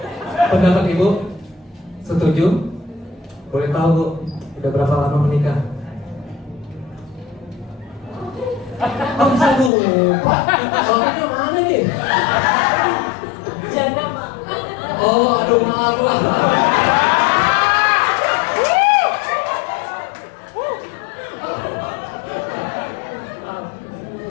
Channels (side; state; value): right; drops out; at 9.7 s